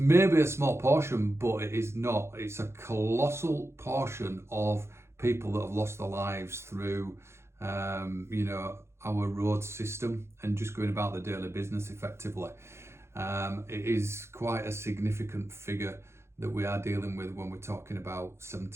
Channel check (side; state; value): left; late; 0.13 ms